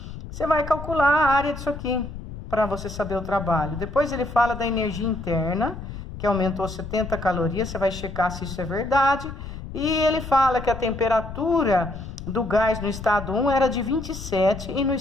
Você vai calcular a área disso aqui, para você saber o trabalho. Depois ele fala da energia interna, que aumentou 70 calorias, você vai checar se isso é verdade. E ele fala que a temperatura do gás no estado 1 era de 27 e no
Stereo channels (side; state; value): left; noise; rumble, 10 dB below the sound